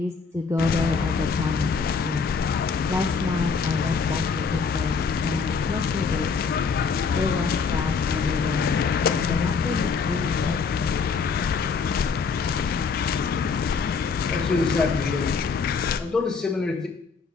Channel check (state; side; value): quieter; right; 5.3 dB